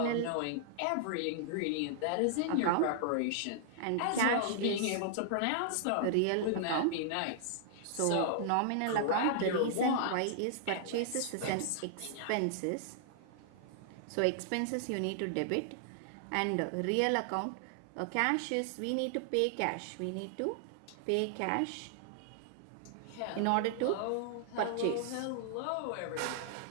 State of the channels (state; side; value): different; both; correlation -0.01